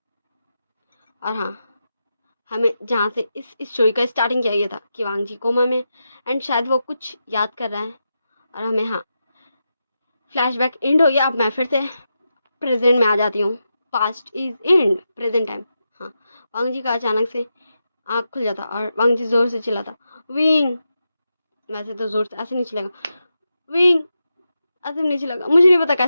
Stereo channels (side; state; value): both; inverted; correlation -0.88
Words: और हाँ, हमें जहाँ से इस स्टोरी का स्टार्टिंग किया गया था कि वांग जी कोमा में, एंड शायद वो कुछ याद कर रहा है, और हमें हाँ फ्लैशबैक एंड हो गया। अब मैं फिर से प्रेजेंट में आ जाती हूँ, past is and, present time. हाँ, वांग जी का अचानक से आँख खुल जाता, और वांग जी जोर से चिल्लाता विंग। वैसे तो जोर से ऐसे नहीं चिल्लेगा, विंग ऐसे नहीं चिल्लेगा, मुझे नहीं पता